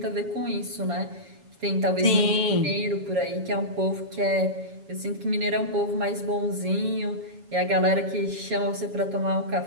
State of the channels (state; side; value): late; left; 7.2 ms